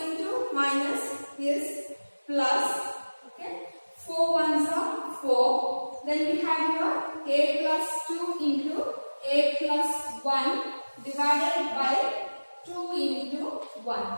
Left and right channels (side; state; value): both; inverted; correlation -1.00